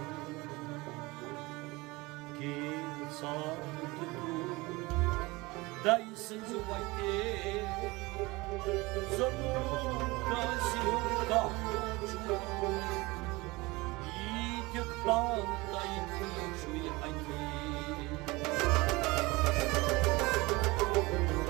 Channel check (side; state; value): left; quieter; 22.7 dB